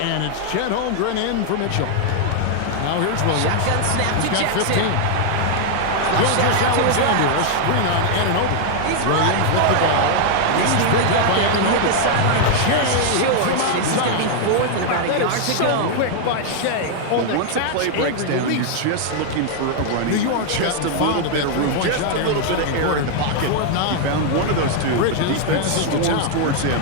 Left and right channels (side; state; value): both; different; correlation 0.00